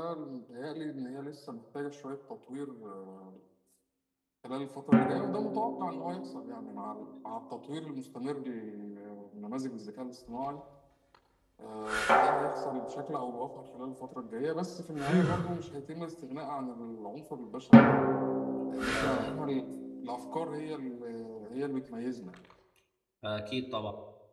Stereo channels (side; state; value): both; identical; correlation 1.00